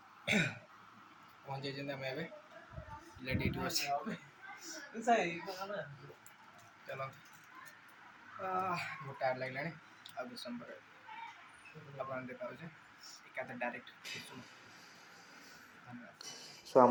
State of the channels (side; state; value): both; identical; correlation 1.00